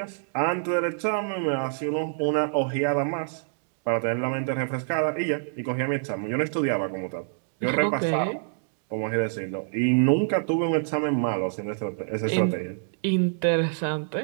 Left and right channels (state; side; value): silent; left; digital silence